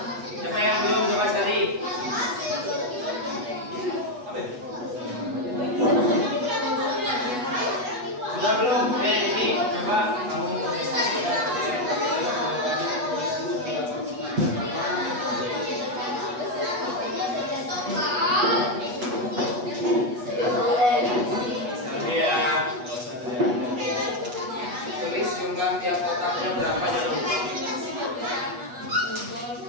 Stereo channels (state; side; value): late; left; 8.2 ms